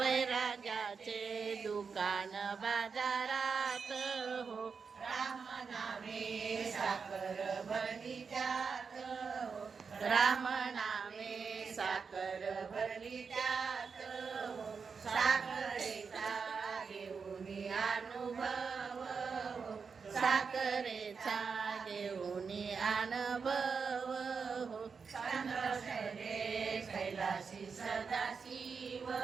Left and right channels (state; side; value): quieter; left; 5.5 dB